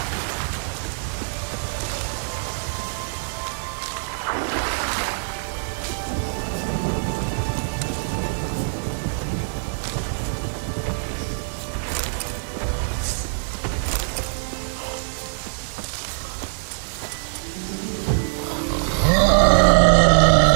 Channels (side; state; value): left; silent; 63 dB below the other